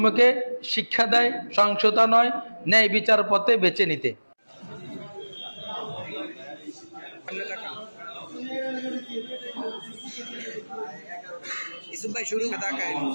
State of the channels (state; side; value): inverted; both; correlation -1.00